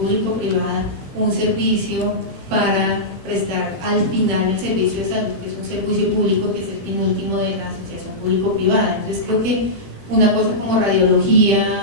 un servicio para prestar al final el servicio de salud, que es un servicio público, que es el fin último de la asociación público-privada. Entonces creo que una cosa como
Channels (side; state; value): left; late; 18 ms